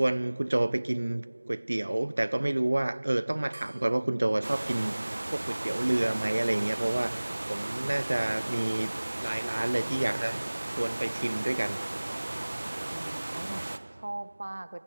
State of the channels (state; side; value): inverted; both; correlation -1.00